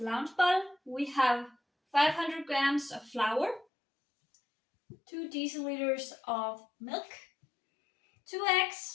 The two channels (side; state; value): right; drops out; at 3.7 s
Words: we have 500 grams of flour, 2 deciliters of milk, 2